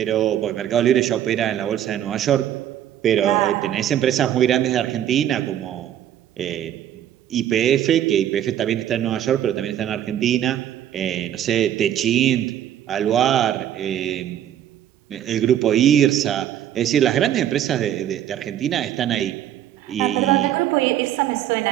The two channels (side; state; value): left; quieter; 11.0 dB